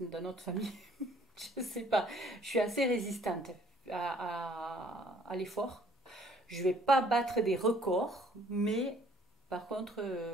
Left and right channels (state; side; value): normal; both; correlation 0.59